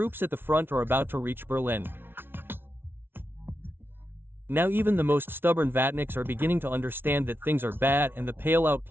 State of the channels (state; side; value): late; left; 0.11 ms